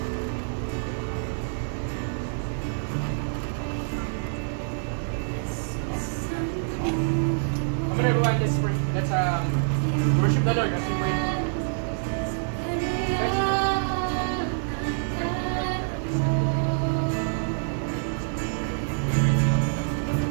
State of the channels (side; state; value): left; silent; digital silence